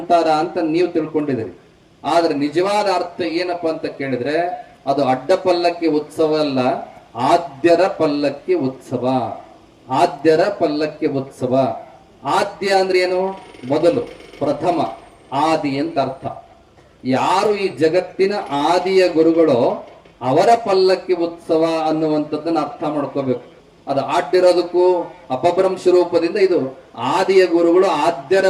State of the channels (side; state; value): both; identical; correlation 1.00